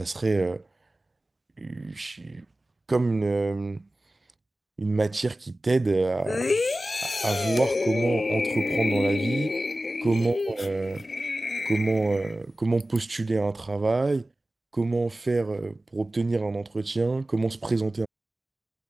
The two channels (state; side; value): normal; both; correlation 0.96